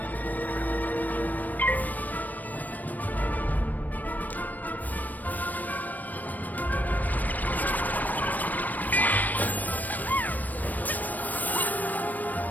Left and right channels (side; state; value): right; late; 0.084 ms